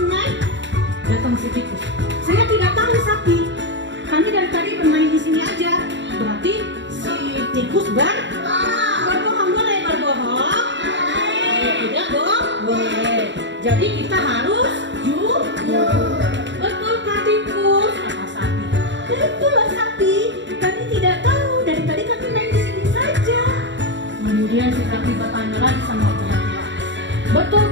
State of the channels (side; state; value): left; late; 0.53 ms